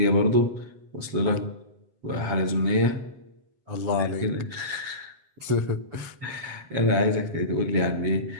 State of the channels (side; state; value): left; late; 7.7 ms